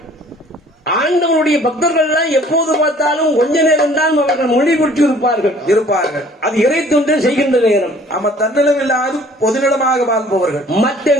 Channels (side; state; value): both; normal; correlation 0.54